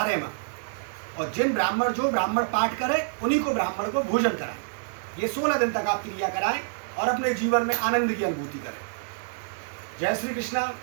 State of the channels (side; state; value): left; silent; digital silence